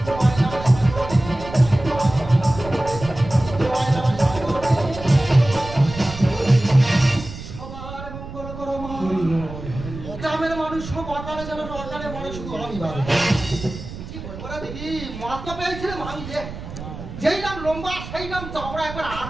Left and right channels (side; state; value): right; noise; rumble, 11 dB below the sound